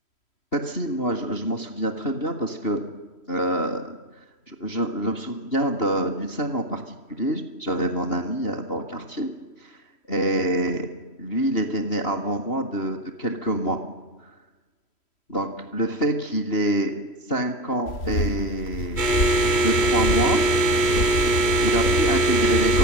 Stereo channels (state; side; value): late; right; 3.1 ms